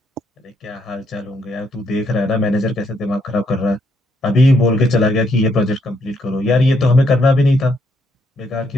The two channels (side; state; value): both; normal; correlation 0.74